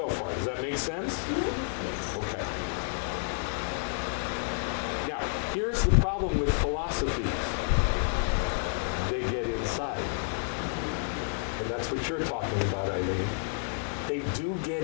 far? Does that make sense? Okay. Now, here's the problem with philosophies. They get inside. and that's what you're talking about, Eileen, they do get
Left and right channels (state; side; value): silent; right; digital silence